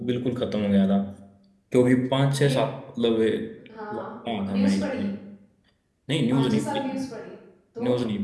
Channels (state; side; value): identical; both; correlation 1.00